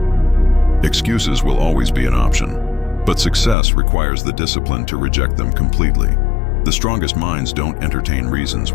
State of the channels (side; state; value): right; drops out; at 3.6 s